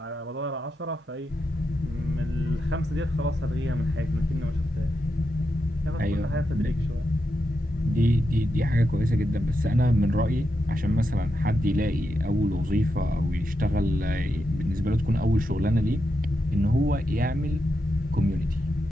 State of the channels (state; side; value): normal; both; correlation 0.86